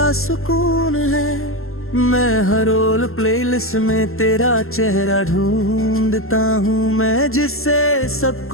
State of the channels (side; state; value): right; late; 0.62 ms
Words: सुकून है। मैं हर रोल प्लेलिस्ट में तेरा चेहरा ढूंढता हूँ। मैं जिससे सब